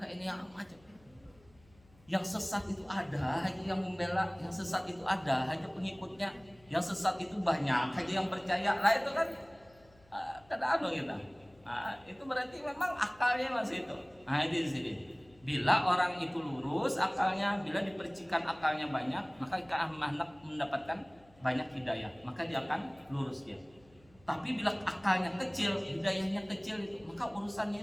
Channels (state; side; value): noise; left; hum, 28 dB below the sound